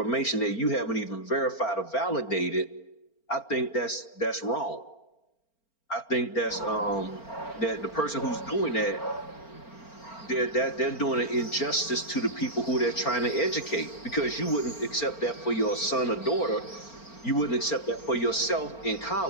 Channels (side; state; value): right; late; 4.4 ms